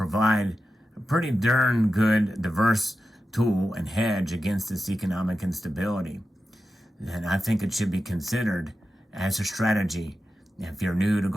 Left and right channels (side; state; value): both; normal; correlation 0.91